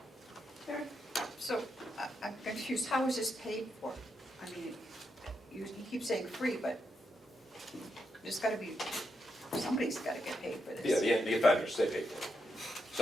So, I'm confused, how is this paid for? I mean, you keep saying free, but there's gotta be, somebody's gotta get paid for this. Yeah, the offenders, they pay for it.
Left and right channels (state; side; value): normal; both; correlation 0.83